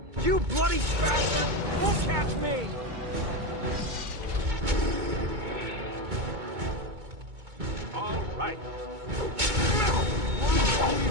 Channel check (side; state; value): left; late; 2.2 ms